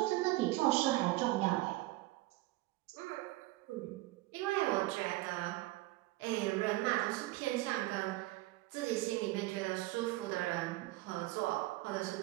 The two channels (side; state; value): left; quieter; 19.2 dB